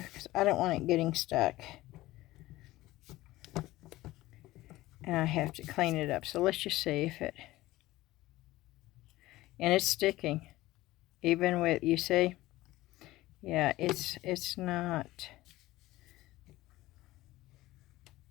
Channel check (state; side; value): quieter; right; 17.5 dB